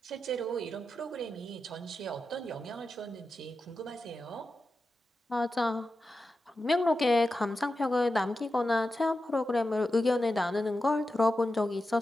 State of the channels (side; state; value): both; normal; correlation 0.91